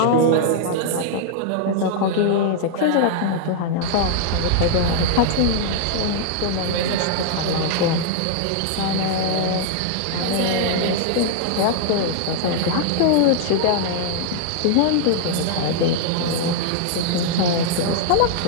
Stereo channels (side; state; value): both; different; correlation -0.01